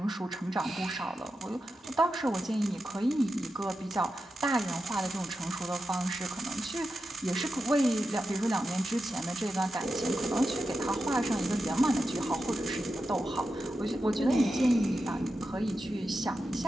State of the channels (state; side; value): normal; both; correlation 0.90